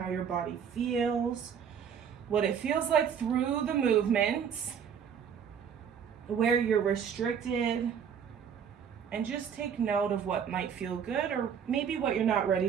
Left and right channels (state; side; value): quieter; left; 7.6 dB